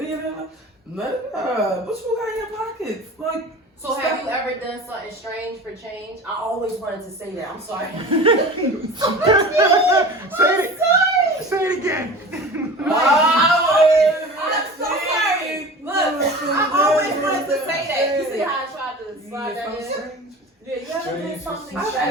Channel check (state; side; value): normal; both; correlation 0.37